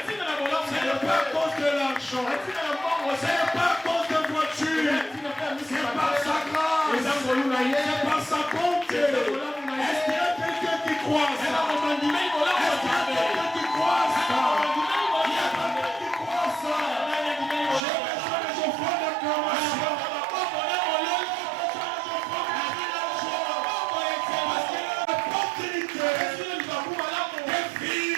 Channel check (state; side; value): drops out; left; at 17.8 s